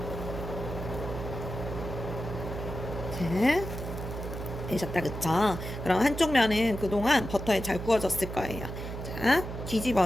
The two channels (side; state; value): right; noise; hum, 7 dB below the sound